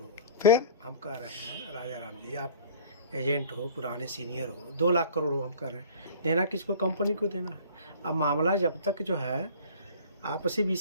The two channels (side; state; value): both; inverted; correlation -0.46